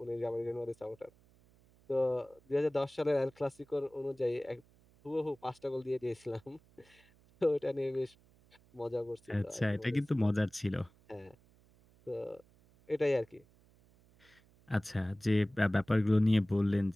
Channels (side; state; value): right; noise; hum, 29 dB below the sound